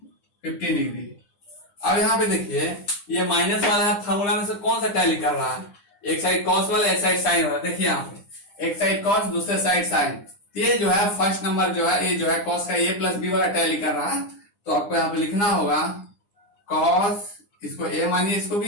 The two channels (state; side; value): late; right; 9.9 ms